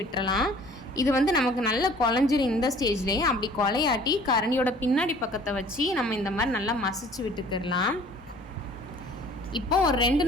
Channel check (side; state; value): both; normal; correlation 0.51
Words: விட்டுறலாம். இது நமக்கு நல்லா குழஞ்சிரும். இந்த ஸ்டேஜ்லேயே அப்படி கொலையாட்டி கரண்டியோட பின்னாடி பக்கத்தை வச்சு நம்ம இந்த மாதிரி நல்லா மசிச்சு விட்டுக்கிடலாம். இப்போ ஒரு 2